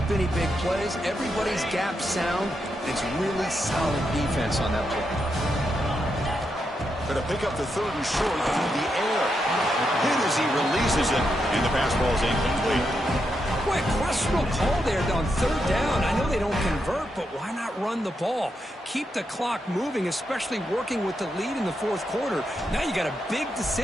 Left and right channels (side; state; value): both; normal; correlation 0.83